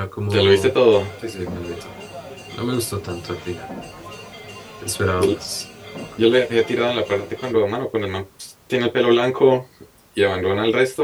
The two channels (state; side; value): identical; both; correlation 1.00